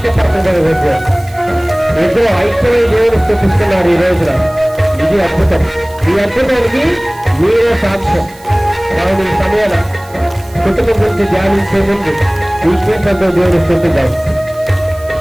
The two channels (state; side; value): noise; right; hiss, 23 dB below the sound